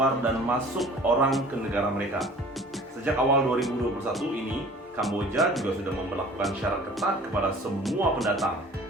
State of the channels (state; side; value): normal; both; correlation 0.47